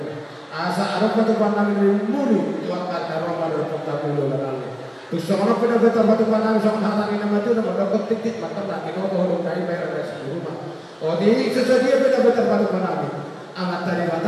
asal apa tu kamu nabi mulu tuan dari Roma berpuk kamu lalu nabi tu seorang pernah betul betul nabi seorang hari nama tu nama dokter titik mata nabi kau boleh dari bayar dari rumah oh di sesuatu betul betul betul nabi amat tadi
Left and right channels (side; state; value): both; identical; correlation 1.00